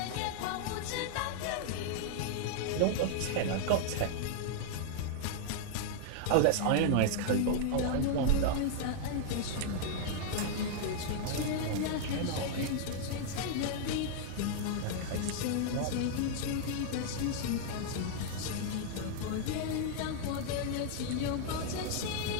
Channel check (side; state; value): both; different; correlation -0.01